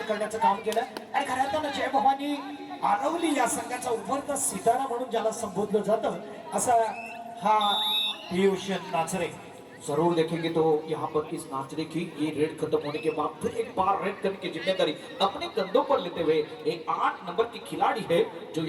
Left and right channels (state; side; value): identical; both; correlation 1.00